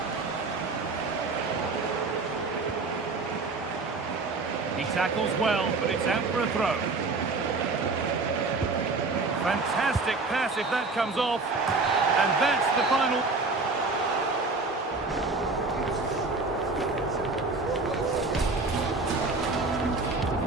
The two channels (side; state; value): left; quieter; 3.7 dB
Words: He tackles well, but it's out for a throw. Fantastic pass if that comes off. And that's the final.